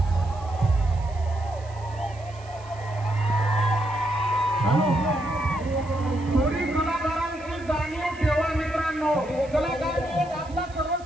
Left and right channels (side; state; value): right; noise; hiss, 24 dB below the sound